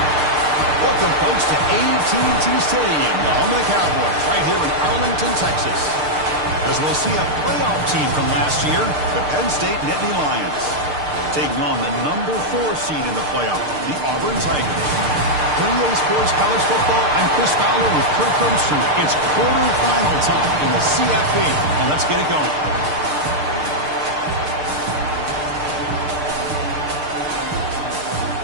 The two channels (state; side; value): late; left; 6.6 ms